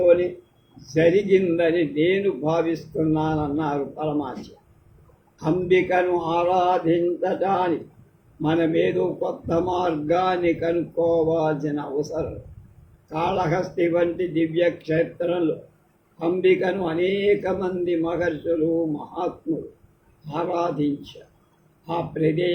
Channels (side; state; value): both; identical; correlation 1.00